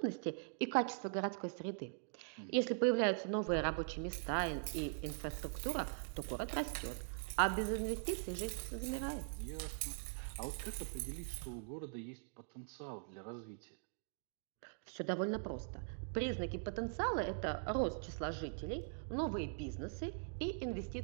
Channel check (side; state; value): left; silent; digital silence